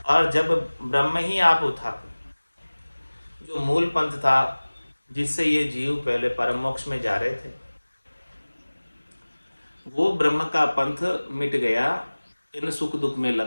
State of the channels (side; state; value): both; inverted; correlation -1.00